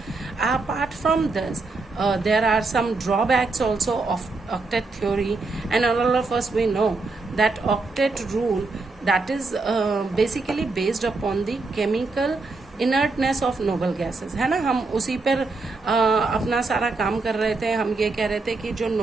Apart from this, there are some drawbacks also of octet theory, and all of us we know that octet rule, that is basically based upon the chemical inertness of noble gases, है ना। हम उसी पर अपना सारा काम कर रहे थे। हम ये कह रहे थे कि जो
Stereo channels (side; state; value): left; quieter; 3.7 dB